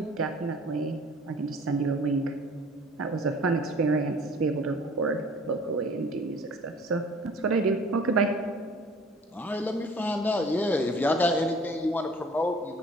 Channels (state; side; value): normal; both; correlation 0.49